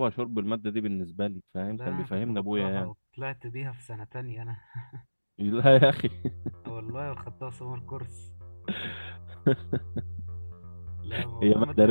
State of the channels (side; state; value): both; inverted; correlation -1.00